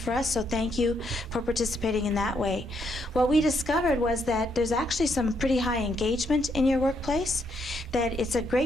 us, so thank you for participating in that way. What we discovered was that there's actually some pretty high engagement in your workplace, that it's a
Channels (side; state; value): both; normal; correlation 0.75